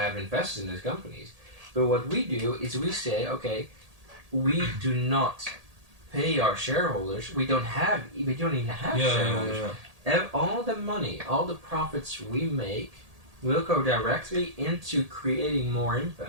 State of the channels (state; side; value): late; left; 1.8 ms